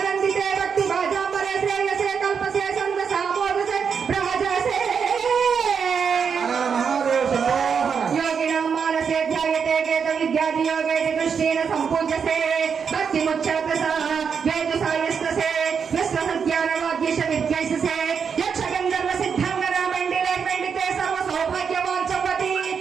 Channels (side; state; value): left; quieter; 6.5 dB